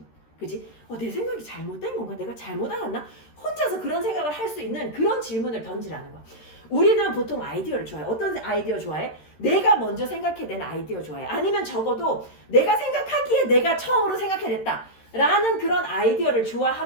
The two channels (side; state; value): right; late; 13 ms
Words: 그지? 내 생각이 잘못된 건가? 내가 잘못 알았나? 혼자서 그런 생각을 할 수 있는 그런 질문을 던지라는 거야. 우리는 보통 아이디어를 좋아해. 어떤 아이디어 좋아해? 내가 먼저 생각해낸 아이디어 좋아해. 아니면 적어도 내가 생각하기에 내가 처음으로 생각해냈다 라는 그런 아이디어를